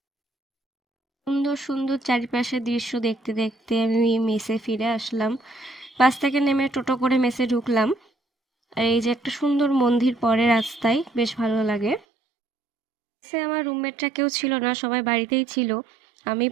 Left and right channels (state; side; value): drops out; left; at 12.0 s